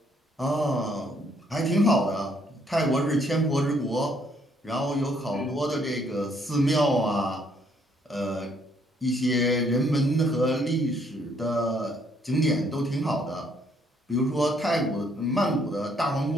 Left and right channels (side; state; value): both; normal; correlation 0.68